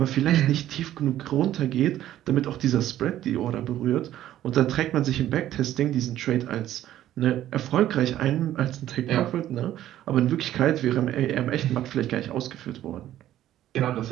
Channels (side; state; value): left; quieter; 12.8 dB